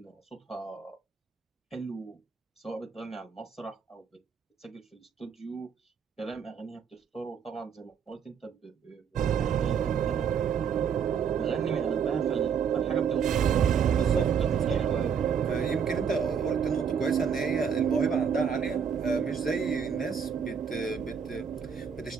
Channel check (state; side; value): quieter; left; 7.0 dB